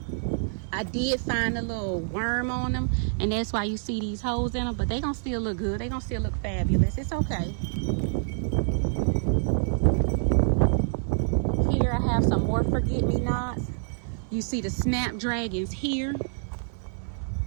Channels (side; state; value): left; silent; 60 dB below the other